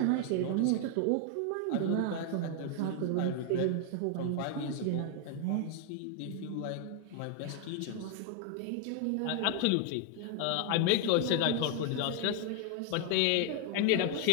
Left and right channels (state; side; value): different; both; correlation 0.00